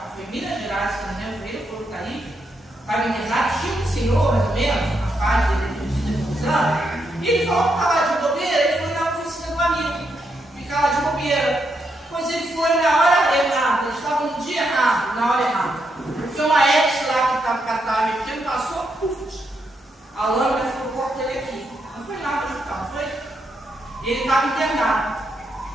foi em Minas Gerais, se não me engano, ele foi o Taí. Estava internado, tinha um senhor, mais ou menos, uma fase dele de confusão. E ele falou que estava lá de bobeira, ele foi na oficina do amigo. Ficar lá de bobeira. Pois ele foi na hora errada, ele estava no dia errado, na hora errada. Foi uma ex lá que estava mexendo, passou, puf, a lâmina ficou no corpo dele aqui. Não foi nada no hospital, não foi? E ele estava internado.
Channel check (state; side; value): normal; both; correlation 0.81